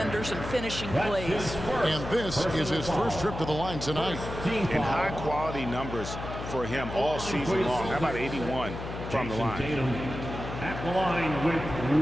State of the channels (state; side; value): noise; left; hum, 8 dB below the sound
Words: and finishing plays. And this is his first trip to the line tonight. And high-quality numbers for him all season long. How about 81 from the line? Tatum at the line with